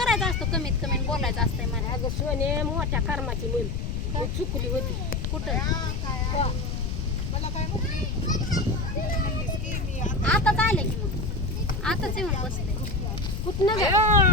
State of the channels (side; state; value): left; noise; rumble, 3 dB below the sound